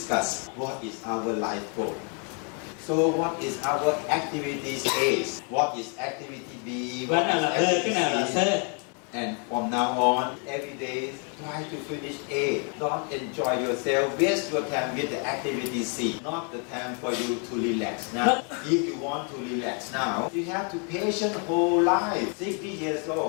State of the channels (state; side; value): quieter; right; 38.7 dB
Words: what is our life goal. So what is our activities A? What is activity B? Cái nào là B, cái nào là C. And from now on, every day, try to finish A. Don't enjoy yourself. Waste your time with the activity C. Not the time for you to relax now. If you want to relax now, you have to patient whole life. 60 years